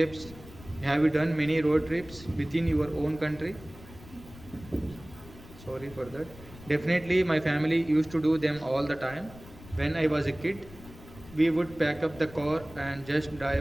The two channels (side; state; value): left; noise; rumble, 19 dB below the sound